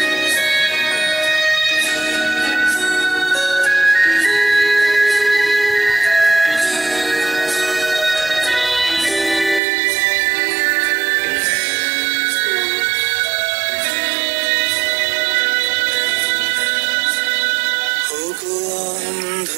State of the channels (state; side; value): drops out; left; at 9.6 s